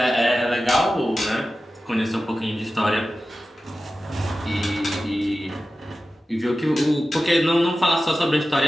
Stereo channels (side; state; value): both; normal; correlation 0.94